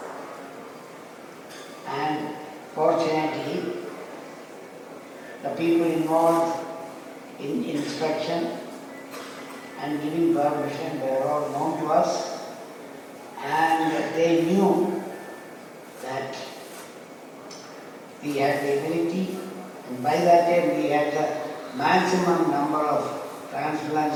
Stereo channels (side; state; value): both; identical; correlation 1.00